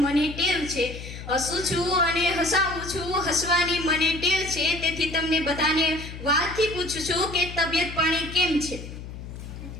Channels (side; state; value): left; noise; hum, 11 dB below the sound